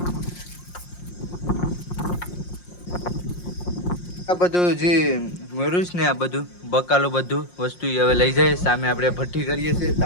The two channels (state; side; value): late; right; 5.6 ms